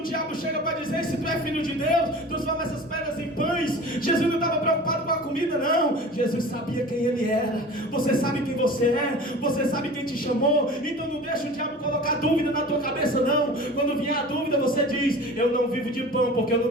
diabo chega para dizer: se tu é filho de Deus, transforma essas pedras em pães, Jesus não estava preocupado com a comida, não. Jesus sabia quem ele era. Você sabe quem você é, você sabe quem te chamou. Então não deixa o diabo colocar dúvida na tua cabeça, não. Quando vier a dúvida, você diz: eu não vivo de pão, porque eu não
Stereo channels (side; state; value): both; normal; correlation 0.38